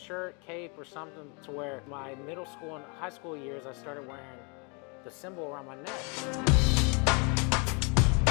cape, or something, to where my middle school and high school years I started wearing the symbol around my neck.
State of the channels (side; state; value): right; quieter; 33.5 dB